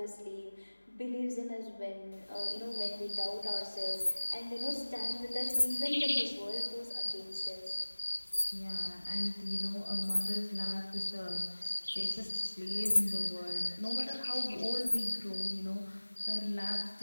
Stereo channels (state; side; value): inverted; both; correlation -1.00